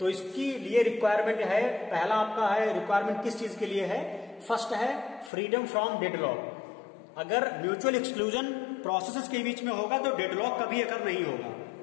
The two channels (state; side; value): drops out; right; at 5.3 s